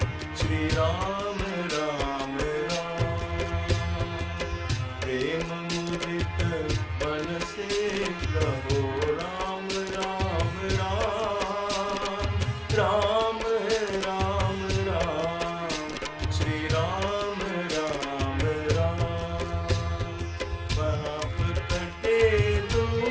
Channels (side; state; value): both; identical; correlation 1.00